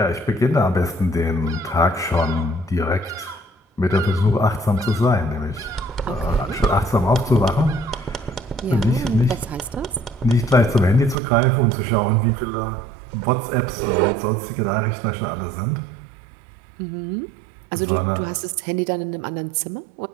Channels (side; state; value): left; drops out; at 11.2 s